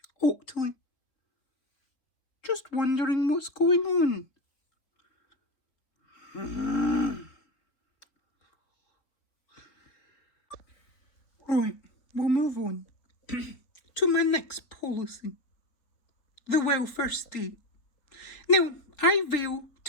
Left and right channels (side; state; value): right; late; 4.1 ms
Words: Oakley. Just wondering what's going on. Right, we'll move on to my next policy. The welfare state. Now, I vow